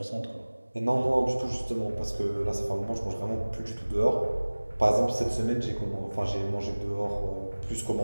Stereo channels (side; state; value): both; inverted; correlation -1.00